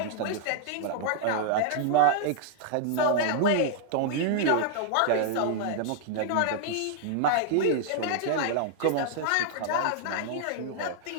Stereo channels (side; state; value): both; different; correlation -0.01